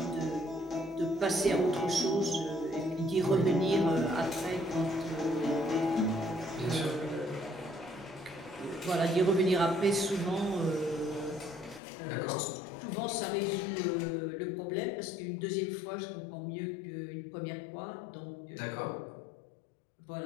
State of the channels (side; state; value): right; drops out; at 11.8 s